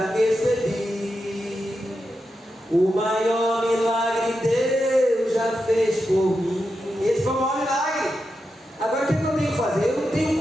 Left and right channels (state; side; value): normal; both; correlation 0.88